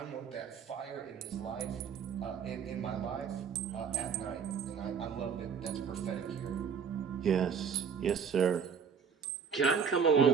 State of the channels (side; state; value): left; quieter; 6.7 dB